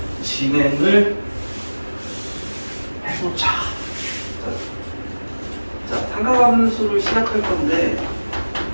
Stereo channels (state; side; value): inverted; both; correlation -1.00